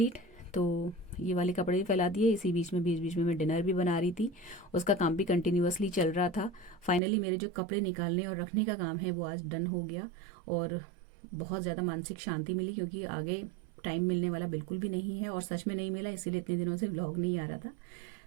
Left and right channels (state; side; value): drops out; left; at 7.0 s